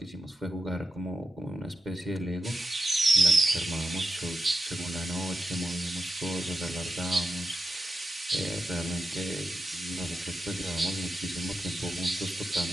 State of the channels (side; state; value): both; normal; correlation 0.89